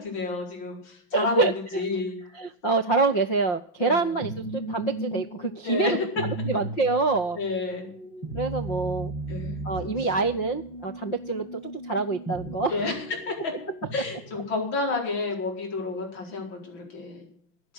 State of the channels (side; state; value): right; late; 5.6 ms